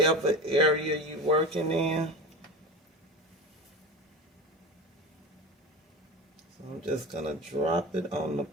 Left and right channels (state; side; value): normal; both; correlation 0.29